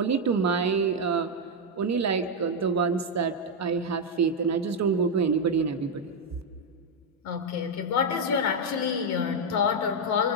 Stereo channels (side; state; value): both; normal; correlation 0.01